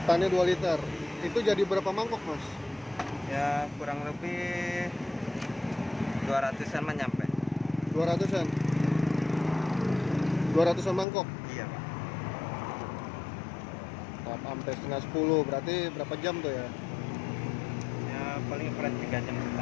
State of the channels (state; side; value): drops out; right; at 11.1 s